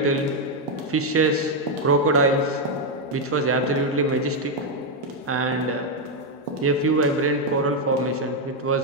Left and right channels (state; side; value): normal; both; correlation 0.02